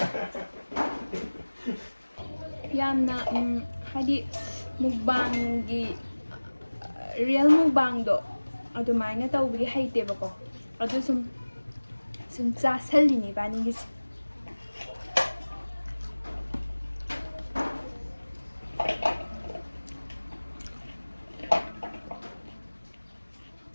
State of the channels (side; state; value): both; inverted; correlation -1.00